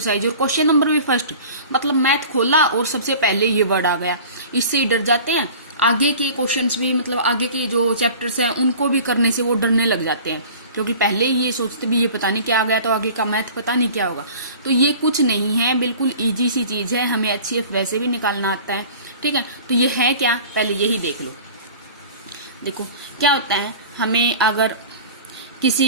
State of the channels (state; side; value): inverted; both; correlation -0.42